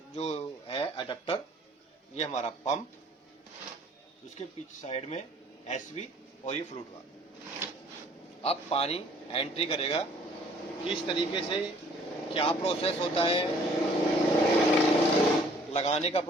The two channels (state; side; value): normal; both; correlation 0.57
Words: जो है अडेप्टर, ये हमारा पंप, उसके पीछे साइड में एसवी और ये फ्लूट वाल्व। अब पानी एंट्री करेगा किस तरीके से, क्या प्रोसेस होता है, लगाने का